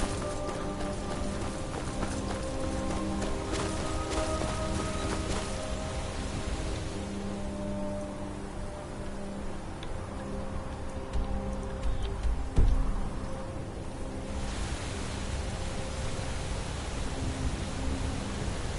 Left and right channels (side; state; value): both; identical; correlation 1.00